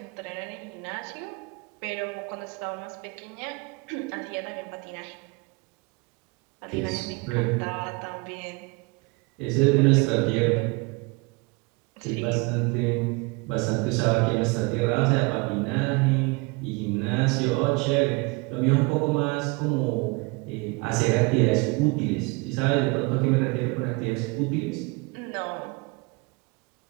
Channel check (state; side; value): quieter; left; 27.2 dB